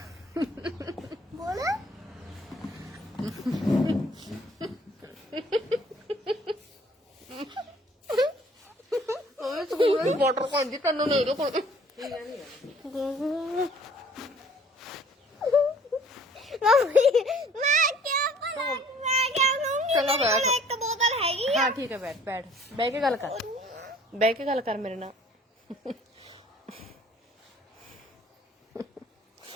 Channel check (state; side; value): normal; both; correlation 0.55